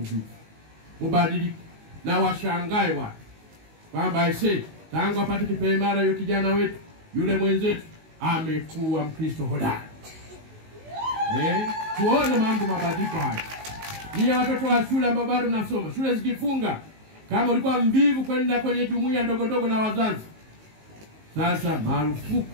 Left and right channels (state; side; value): late; left; 19 ms